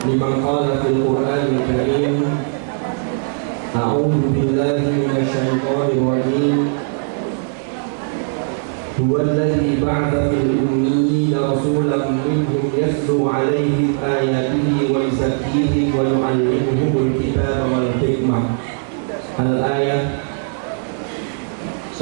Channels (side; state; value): left; silent; 67 dB below the other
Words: liman qala fil Qur'anil Karim. A'udzu billahi minasyaitonir rajim. Huwa alladzi ba'atha fil ummiyina rasulan minhum yatlu 'alaihim ayatihi wa yuzakkihim wa yu'allimuhumul kitaba wal hikmah. Al-ayah.